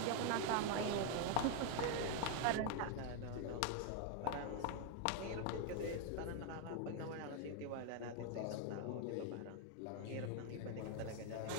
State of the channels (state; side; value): different; both; correlation 0.01